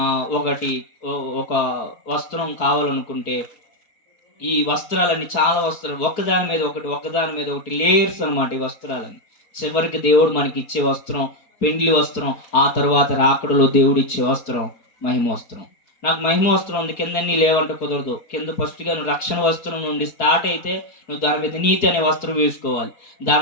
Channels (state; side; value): late; right; 4.6 ms